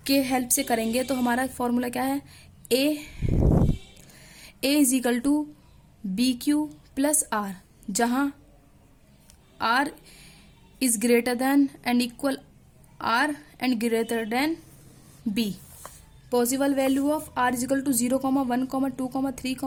के हेल्प से करेंगे। तो हमारा फॉर्मूला क्या है, a is equal to BQ + R, जहाँ R is greater than and equal R and greater than B। Possible value of R is equal to 0, 1, 2, 3,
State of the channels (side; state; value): both; identical; correlation 1.00